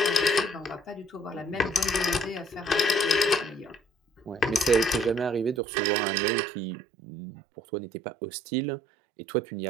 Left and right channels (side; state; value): left; drops out; at 5.6 s